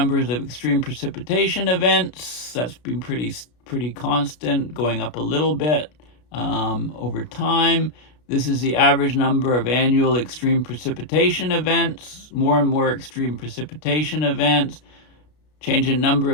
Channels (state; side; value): late; right; 33 ms